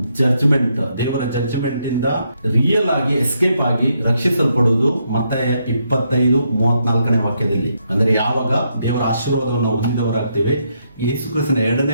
ಜಡ್ಜ್ಮೆಂಟ್, ದೇವರ ಜಡ್ಜ್ಮೆಂಟ್ ಇಂದ ರಿಯಲ್ ಆಗಿ ಎಸ್ಕೇಪ್ ಆಗಿ ರಕ್ಷಿಸಲ್ಪಡುವುದು ಮತ್ತಾಯ 25, 34ನೇ ವಾಕ್ಯದಲ್ಲಿ. ಅಂದ್ರೆ ಯಾವಾಗ ದೇವರ ಆಶೀರ್ವಾದವನ್ನು ಹೊಂದಿದವರಾಗ್ತೇವೆ, ಯೇಸು ಕ್ರಿಸ್ತನ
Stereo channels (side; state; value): both; inverted; correlation -0.78